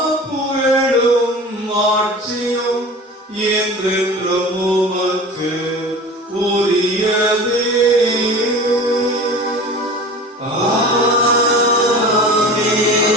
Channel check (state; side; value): normal; both; correlation 0.36